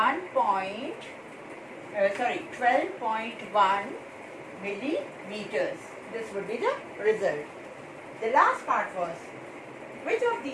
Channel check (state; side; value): identical; both; correlation 1.00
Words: 12.1 millimeters. This would be the result. The last part was, which of